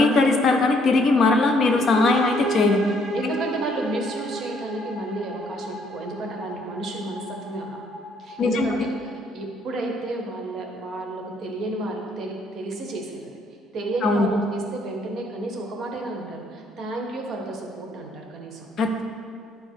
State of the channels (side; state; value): both; normal; correlation 0.67